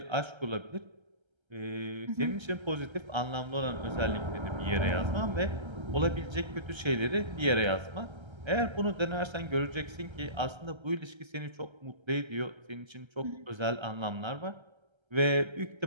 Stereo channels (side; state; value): left; late; 1.3 ms